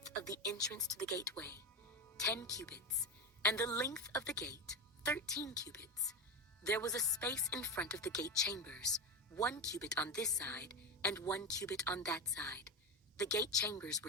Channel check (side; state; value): both; normal; correlation 0.18